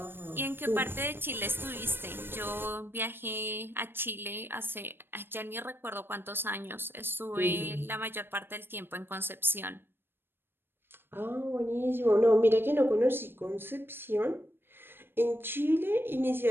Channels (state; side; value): late; left; 0.10 ms